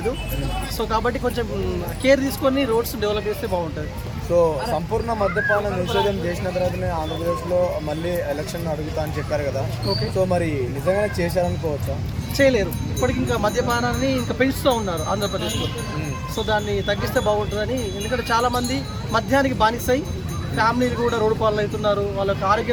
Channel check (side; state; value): both; identical; correlation 1.00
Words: సో కాబట్టి కొంచెం కేర్ తీసుకొని రోడ్స్ డెవలప్ చేస్తే బాగుంటుంది. సో సంపూర్ణ మద్యపాన నిషేధం చేసిన తర్వాతనే ఆంధ్రప్రదేశ్లో మళ్ళీ ఎలక్షన్ అడుగుతా అని చెప్పారు కదా. ఓకే, సో మరి నిజంగానే చేశారనుకోవచ్చా? చేయలేరు. ఇప్పటికి ఇంకా మద్యపానాన్ని ఇంకా పెంచుతూ ఉన్నారు ఆంధ్రప్రదేశ్లో. సో దాన్ని తగ్గిస్తే బాగుంటుందని. ఎందుకంటే చాలామంది మద్యానికి బానిసై ఫ్యామిలీలు కూడా రోడ్డు పాలు అవుతున్నారు, వాళ్ళకి